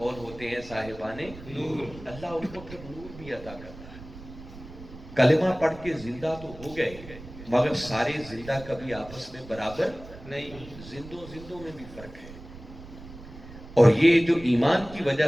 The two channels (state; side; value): noise; right; rumble, 16 dB below the sound